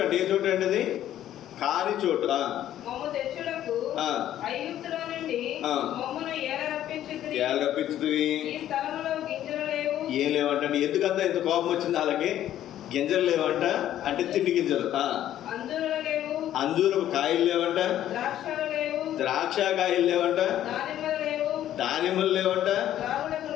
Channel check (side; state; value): right; quieter; 12.0 dB